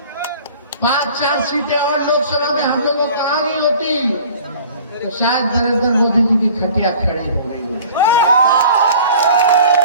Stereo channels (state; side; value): inverted; both; correlation -0.47